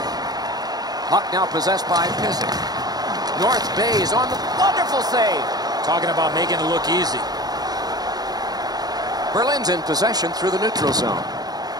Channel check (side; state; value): left; late; 0.19 ms